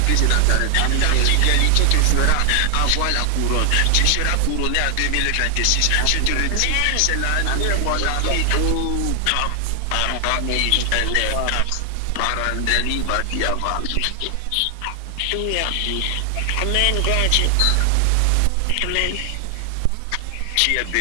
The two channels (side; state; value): both; different; correlation 0.00